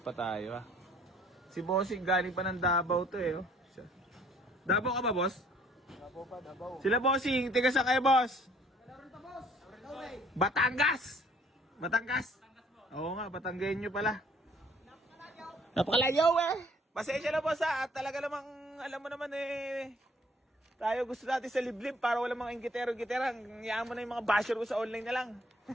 tayo ha. Si bossing galing pa ng Davao to eh. Oh. Davao ka ba, boss? Davao pa, Davao. Sila bossing, tiga sa kayo, boss? Batangas! Batangas? Oo nga, Batanggenyo pala. Napakalagyaw eh! Pasensya na boss ha, at talaga namang, alam mo naman eh, tayo gusto natin sa liblib para wala mga ingitero-gitera. Hayaan mo na yung mga basher ko sa online na lang.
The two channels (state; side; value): normal; both; correlation 0.59